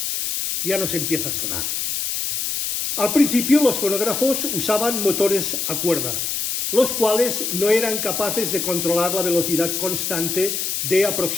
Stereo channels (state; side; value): noise; left; hiss, 2 dB below the sound